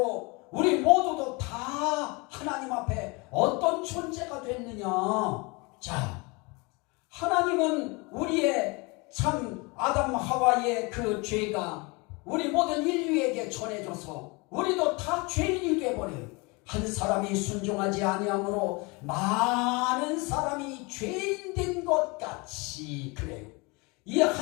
우리 모두도 다 하나님 앞에 어떤 존재가 됐느냐? 자, 하나님은 우리의 참 아담 하와의 그 죄가 우리 모든 인류에게 전해져서 우리도 다 죄인이 되어버려요. 한 사람이 순종하지 아니함으로 많은 사람이 죄인 된 것 같이 그래요. 이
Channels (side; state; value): right; quieter; 27.6 dB